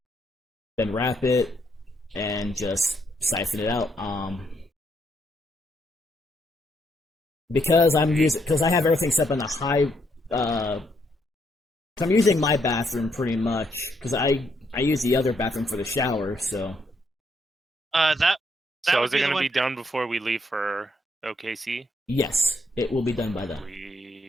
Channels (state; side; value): normal; both; correlation 0.75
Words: Then wrap it and just siphon it out. Because I have everything set up in a high because I'm using my bathroom pretty much because I use the other bathroom for the shower, so So is it going to be done before we leave for OKC? Yes, it will be done by then.